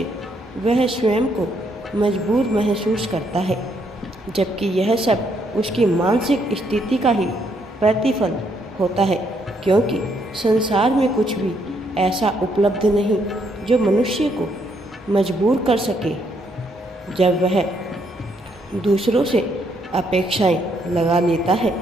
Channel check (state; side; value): normal; both; correlation 0.73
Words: वह स्वयं को मजबूर महसूस करता है, जबकि यह सब उसकी मानसिक स्थिति का ही प्रतिफल होता है। क्योंकि संसार में कुछ भी ऐसा उपलब्ध नहीं जो मनुष्य को मजबूर कर सके। जब वह दूसरों से अपेक्षाएं लगा लेता है